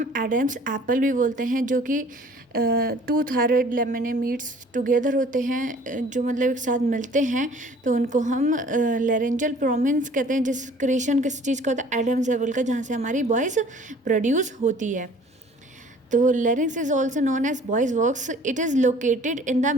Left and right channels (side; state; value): both; normal; correlation 0.52